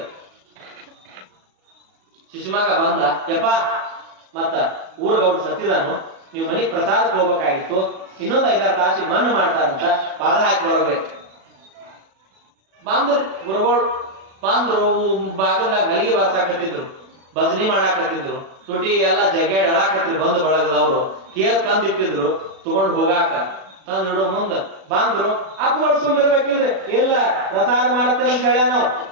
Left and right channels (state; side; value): late; left; 36 ms